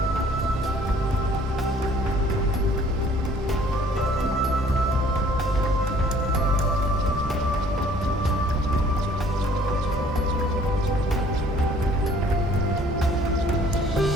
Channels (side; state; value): both; normal; correlation 0.57